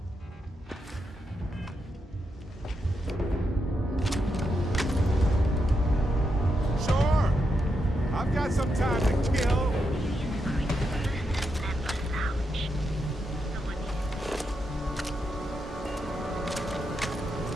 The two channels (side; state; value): both; normal; correlation 0.84